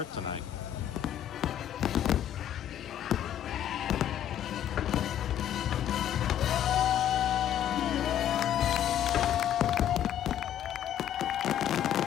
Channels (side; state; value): right; quieter; 10.7 dB